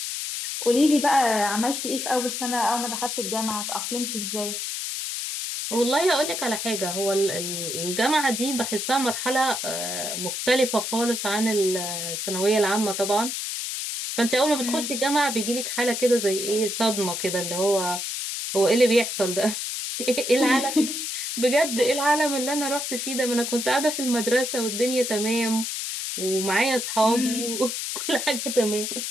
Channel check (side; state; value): left; noise; hiss, 4 dB below the sound